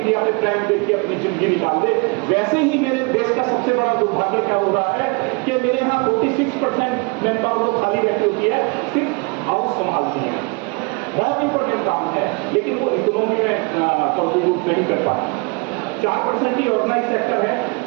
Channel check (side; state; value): left; quieter; 31.5 dB